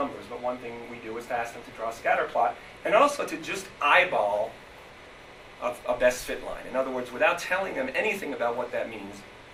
but one thing we do is to ask them to draw a scatter plot, and also to just eyeball a best fit line. In other words, without telling them anything about what that means,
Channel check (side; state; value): both; identical; correlation 1.00